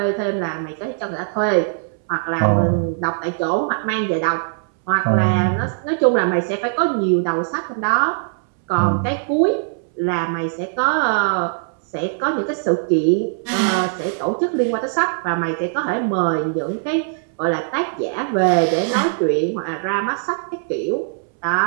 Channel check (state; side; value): silent; left; 65 dB below the other